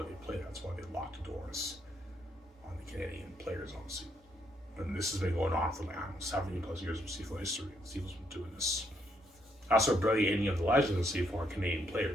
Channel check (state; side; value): normal; both; correlation 0.74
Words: they play. That's why they lock the doors on the Canadian players, obviously. And this has been going on for like 70 plus years of CFL history. CFL's been doing this. That's why barely any of the legends of CFL are Canadian